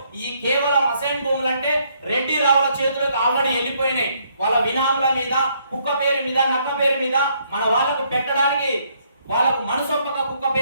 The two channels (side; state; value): both; inverted; correlation -0.70